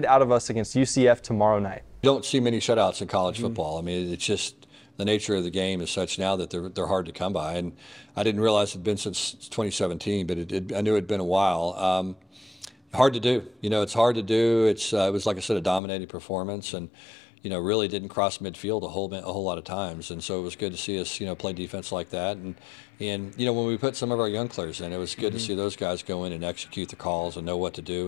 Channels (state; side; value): drops out; right; at 15.8 s